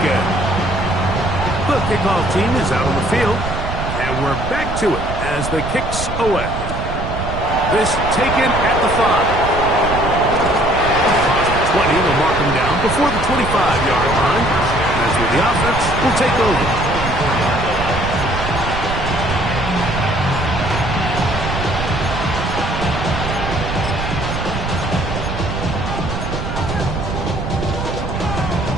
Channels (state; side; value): noise; right; rumble, 5 dB below the sound